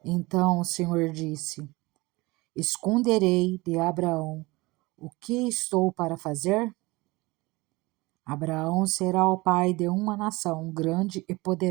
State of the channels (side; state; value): left; quieter; 22.4 dB